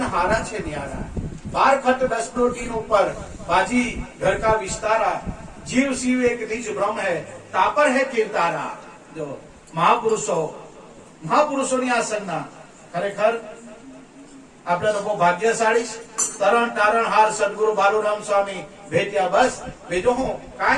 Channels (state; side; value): identical; both; correlation 1.00